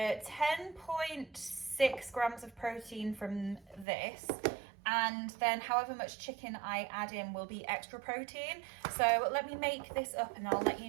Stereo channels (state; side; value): drops out; left; at 3.9 s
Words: grams of protein from this. And then however much chicken I add in will be extra protein. So let me make this up and I'll let you